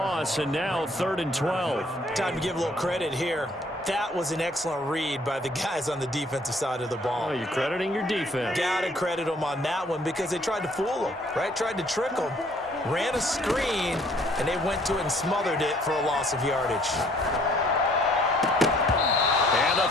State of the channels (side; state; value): both; normal; correlation 0.61